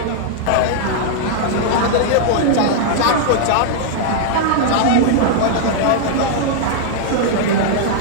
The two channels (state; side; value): different; both; correlation -0.01